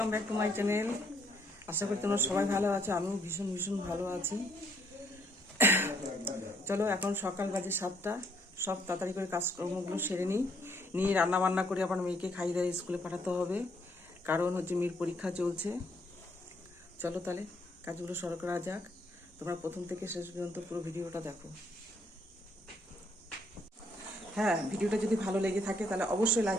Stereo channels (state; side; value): normal; both; correlation 0.68